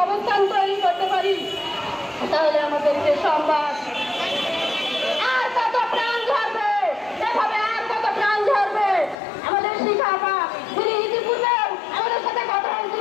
অবস্থান তৈরি করতে পারি, তাহলে আমাদেরকে সংবাদ আর কত প্রাণ ঝরবে, এভাবে আর কত প্রাণ ঝরবে। আমাদের শিখাপা তিনি ইতিপূর্বে আমাদের সাথে কথা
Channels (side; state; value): right; drops out; at 9.2 s